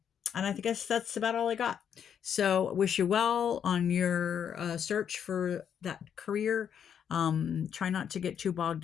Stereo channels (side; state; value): right; quieter; 8.3 dB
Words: I guess that's about all I got. So wish you well on your search for that career. Try not to get too bogged